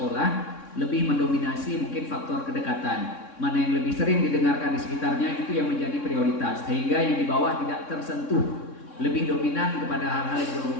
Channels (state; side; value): late; right; 3.6 ms